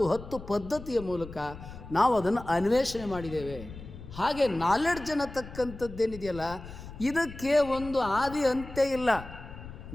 10 ಪದ್ಧತಿಯ ಮೂಲಕ ನಾವು ಅದನ್ನು ಅನ್ವೇಷಣೆ ಮಾಡಿದ್ದೇವೆ. ಹಾಗೆ ನಾಲೆಡ್ಜ್ ಅನ್ನತಕ್ಕಂಥದ್ದೇನಿದೆಯಲ್ಲ, ಇದಕ್ಕೆ ಒಂದು ಆದಿ ಅಂತ್ಯ ಇಲ್ಲ,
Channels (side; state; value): left; noise; rumble, 13 dB below the sound